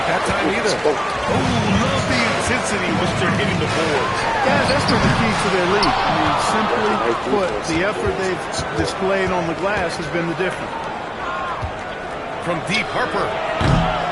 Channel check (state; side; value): identical; both; correlation 1.00